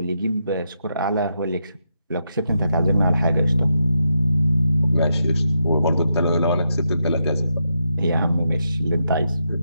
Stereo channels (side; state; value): both; inverted; correlation -0.83